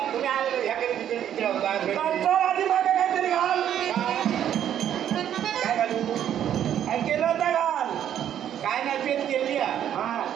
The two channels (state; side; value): quieter; left; 10.2 dB